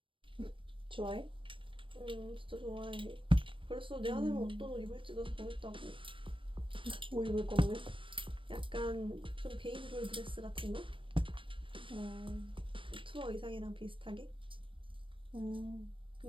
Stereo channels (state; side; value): late; left; 0.25 ms